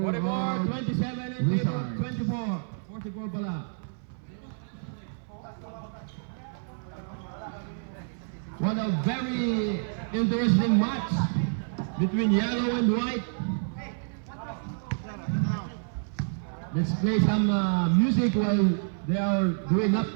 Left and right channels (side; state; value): left; silent; 56 dB below the other